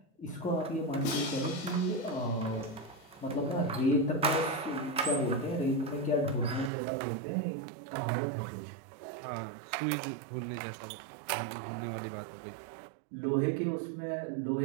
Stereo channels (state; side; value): drops out; left; at 6.7 s